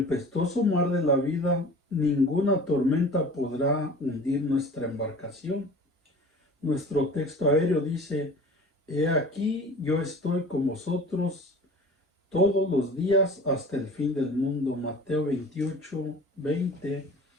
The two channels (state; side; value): normal; both; correlation 0.42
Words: mar de la vida, ninguna tormenta podrá hundir nuestra embarcación. Nuestro texto aéreo dice: he aquí, yo estoy con vosotros todos los días hasta el fin del mundo. Mateo 28, 20.